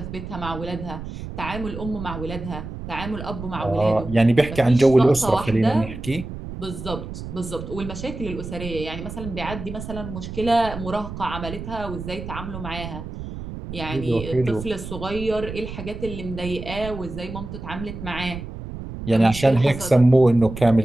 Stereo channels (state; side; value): noise; right; rumble, 9 dB below the sound